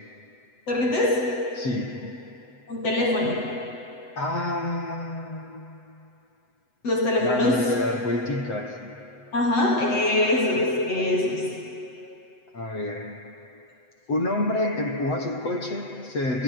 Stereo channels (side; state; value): right; late; 7.9 ms